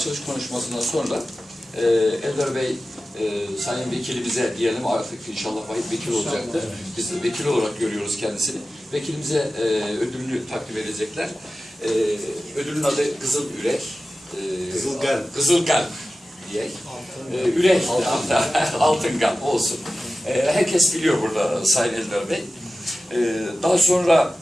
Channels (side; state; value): both; normal; correlation 0.95